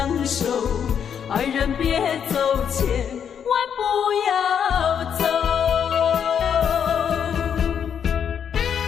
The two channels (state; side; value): quieter; right; 8.0 dB